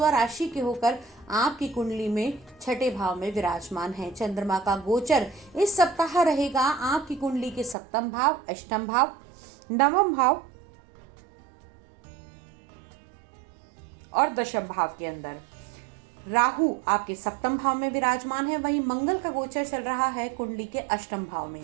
के होकर आपकी कुंडली में छठे भाव में विराजमान है। चंद्रमा का गोचर इस सप्ताह रहेगा आपकी कुंडली के सप्तम भाव, अष्टम भाव, नवम भाव और दशम भाव के अंदर। राहु आपके सप्तम भाव में विराजमान है। वहीं मंगल का गोचर चल रहा है कुंडली के अष्टम भाव में।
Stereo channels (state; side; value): drops out; left; at 7.8 s